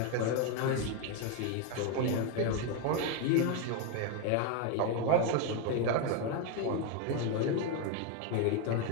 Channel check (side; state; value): both; different; correlation 0.02